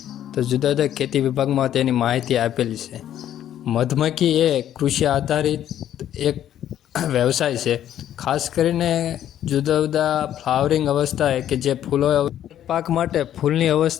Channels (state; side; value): quieter; right; 11.1 dB